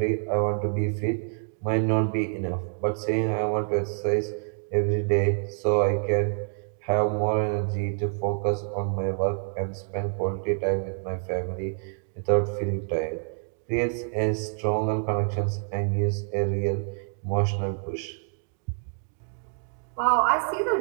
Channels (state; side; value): silent; left; 60 dB below the other